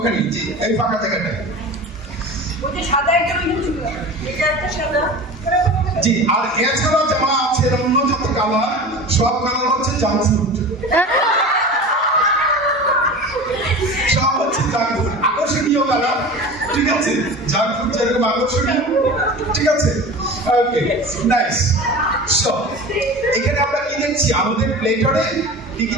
জি, এই ফাঁকা জায়গাটায়। জি, আর এছাড়াও যারা আছে অন্য যত কালার, সব কালার হচ্ছে জাঙ্ক ফুড, সব হচ্ছে জাঙ্ক ফুড, আকর্ষণীয় কালার, ঠিক আছে? জাঙ্ক ফুড যেরকম আকর্ষণীয়, ঠিক আছে? ওকে, নাইস। সো এখানে আমরা কি দেখছি, আমাদের প্লেটারে কি কি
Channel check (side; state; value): both; normal; correlation 0.34